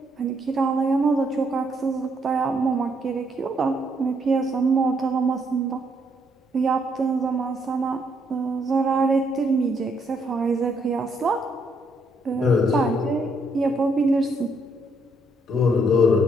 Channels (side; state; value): both; normal; correlation 0.72